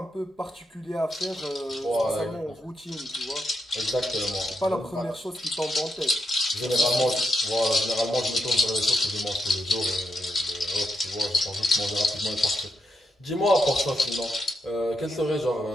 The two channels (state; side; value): normal; both; correlation 0.81